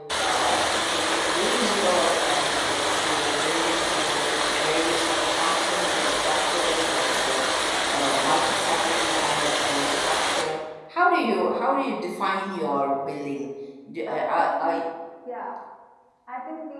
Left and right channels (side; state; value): both; identical; correlation 1.00